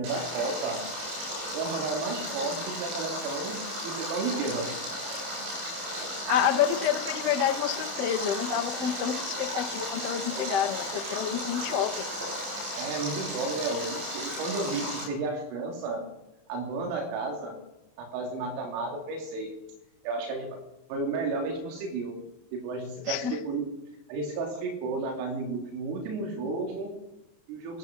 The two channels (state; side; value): late; left; 29 ms